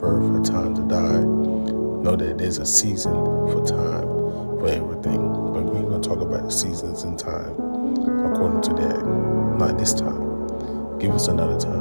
a time to die. Know that there's a season for time for everything, but we're going to talk about the seasons and time according to that. Not this time. Give us another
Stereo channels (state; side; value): inverted; both; correlation -1.00